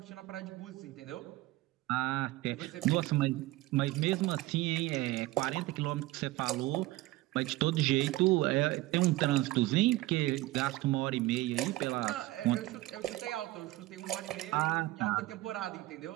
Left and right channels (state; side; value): quieter; left; 18.3 dB